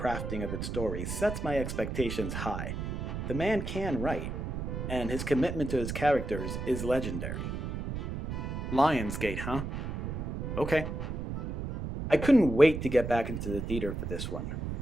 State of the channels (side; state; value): right; noise; rumble, 4 dB below the sound